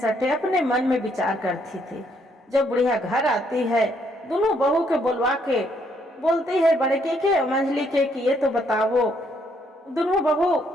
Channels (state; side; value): normal; both; correlation 0.70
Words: अपने मन में विचार करती थी। जब बुढ़िया घर आती है, दोनों बहू के बुलवा के बोलती है बड़े के मंझली के कि ये तो बताओ दोनों बहू,